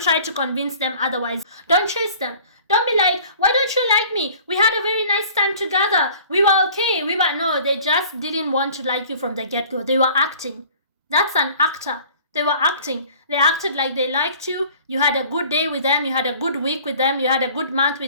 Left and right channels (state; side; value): inverted; both; correlation -0.49